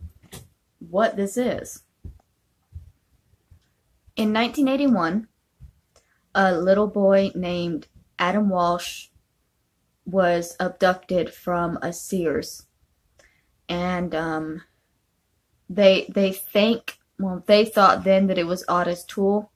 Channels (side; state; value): both; identical; correlation 1.00